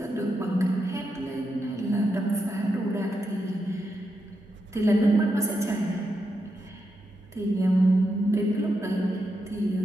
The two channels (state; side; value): normal; both; correlation 0.85